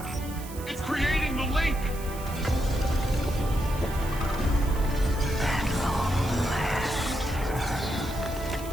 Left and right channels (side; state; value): right; noise; hiss, 15 dB below the sound